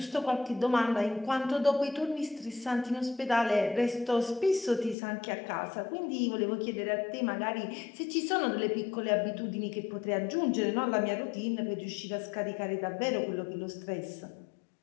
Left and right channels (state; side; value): drops out; right; at 5.0 s